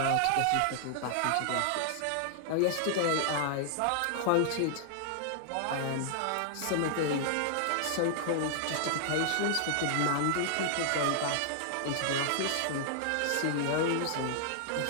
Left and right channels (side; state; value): both; different; correlation -0.01